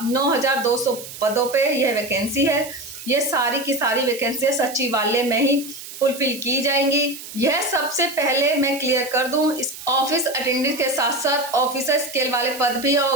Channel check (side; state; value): right; noise; hiss, 13 dB below the sound